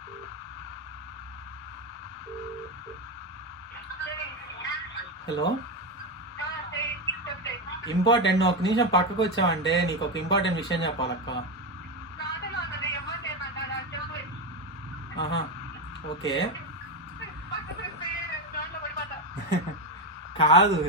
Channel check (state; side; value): normal; both; correlation 0.12